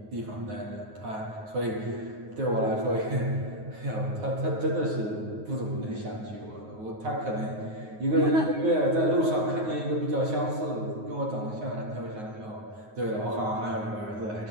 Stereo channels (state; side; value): late; left; 9.4 ms